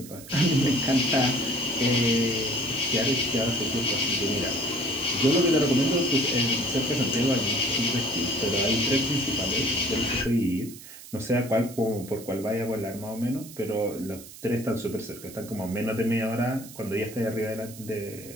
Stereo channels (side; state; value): right; noise; hiss, 16 dB below the sound